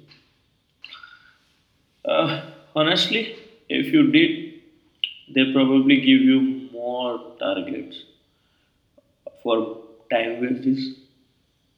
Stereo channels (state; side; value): identical; both; correlation 1.00